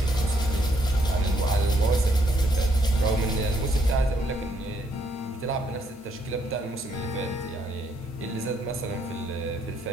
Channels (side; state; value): both; normal; correlation 0.72